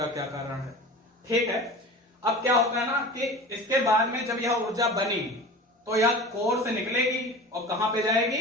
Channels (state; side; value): normal; both; correlation 0.35